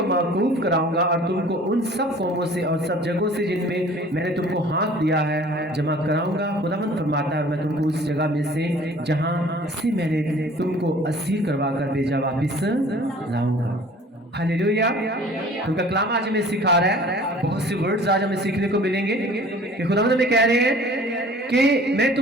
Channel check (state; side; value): normal; both; correlation 0.49